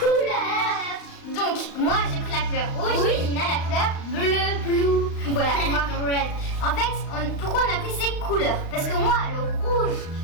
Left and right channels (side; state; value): right; late; 35 ms